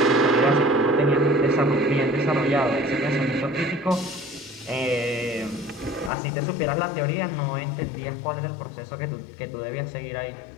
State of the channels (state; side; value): drops out; right; at 6.1 s